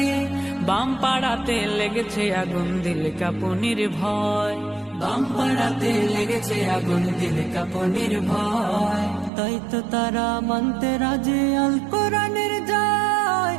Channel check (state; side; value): drops out; left; at 9.3 s